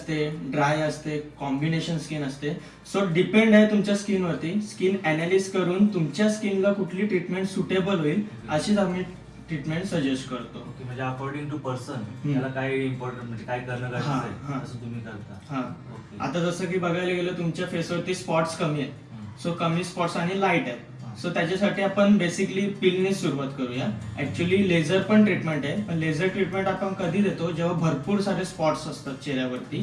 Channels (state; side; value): identical; both; correlation 1.00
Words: ड्राय असते, कॉम्बिनेशन स्किन असते. सो डिपेंड आहे तुमच्या स्किनवरती. स्किन अनालिस करून तुमच्या स्किनला कुठली ट्रीटमेंट सुटेबल होईल अशीच आम्ही ट्रीटमेंट सजेस्ट करतो. ओके, म्हणजे अकॉर्डिंग टू पर्सन त्याला काय इम्पॉर्टंट, म्हणजे काय करणं गरजेचं आहे असं तुम्ही करता. हा, आता जसं की बघायला गेलं तुमच्या फेसवरती स्पॉट्स कमी आहेत, सो कमी स्पॉट्स आणि लाईट आहेत. सो त्याच्यासाठी आपण बेसिकली पीलने सुरुवात करूया. ऍक्च्युली लेझर पण ट्रीटमेंट आहे, पण लेझर ट्रीटमेंट आपण कधी देतो जेव्हा भरपूर सारे स्पॉट्स असतात चेहऱ्यावरती,